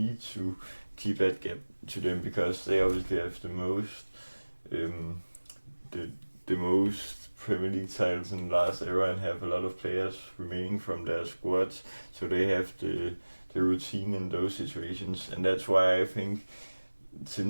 to keep that gap to them because they obviously have the most the most Premier League titles in the last era and have a lot of players remaining from their squads, so they have the routine in those situations. And that's why I think,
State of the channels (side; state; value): both; inverted; correlation -1.00